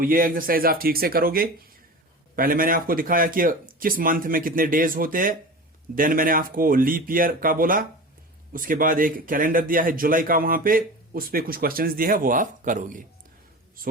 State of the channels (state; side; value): normal; both; correlation 0.32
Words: ये एक्सरसाइज आप ठीक से करोगे। पहले मैंने आपको दिखाया कि किस मंथ में कितने डेज होते हैं, देन मैंने आपको लीप ईयर का बोला, उसके बाद एक कैलेंडर दिया है जुलाई का, वहां पे उस पे कुछ क्वेश्चंस दिए हैं वो आप करोगे।